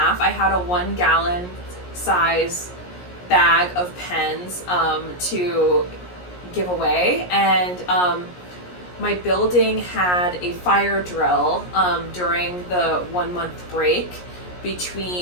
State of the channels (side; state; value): right; late; 17 ms